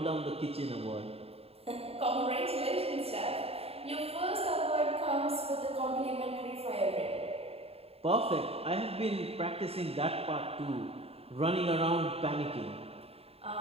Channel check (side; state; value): left; late; 0.29 ms